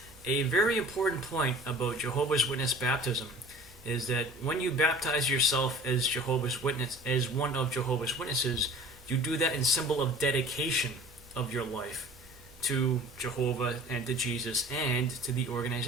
A very important point about Jehovah's Witness baptism is that when you baptize yourself as Jehovah's Witness, as one of Jehovah's Witnesses, you do that in symbol of dedication of your life to Jehovah and to Jesus and to the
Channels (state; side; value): normal; both; correlation 0.45